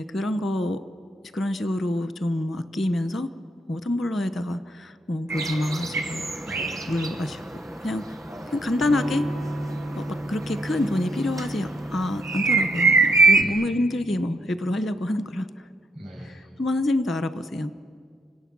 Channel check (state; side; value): normal; both; correlation 0.76